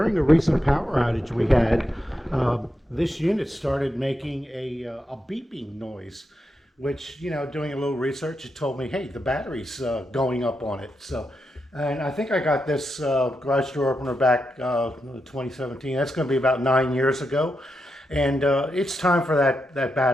a recent power outage we had, this unit started making a beeping noise, which, doing a little research, it told me, hey, the battery's going up on it. So, and I think I got this garage door opener back 2017. That's going to be about 9 years ago. And it's time for that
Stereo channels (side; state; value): both; normal; correlation 0.86